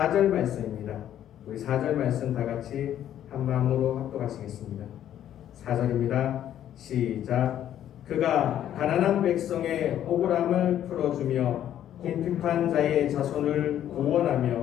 말씀입니다. 우리 4절 말씀 다 같이 한 마음으로 합독하시겠습니다. 4절입니다. 시작. 그가 가난한 백성의 억울함을 풀어주며 궁핍한 자의 자손을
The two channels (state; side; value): quieter; right; 11.0 dB